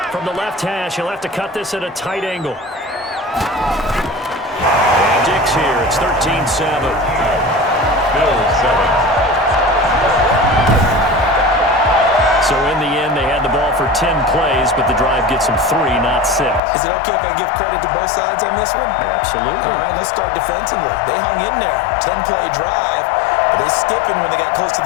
From the left hash, he'll have to cut this at a tight angle. Dix here. It's 13-7. Bills 7. So in the end, they had the ball for 10 plays, but the drive gets them 3, not 6. Is it okay if I give credit to both sides on this one? Absolutely. All right, let's start defensively. They hung in there. 10-play drive, but they stiffened when they got close to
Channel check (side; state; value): right; drops out; at 16.6 s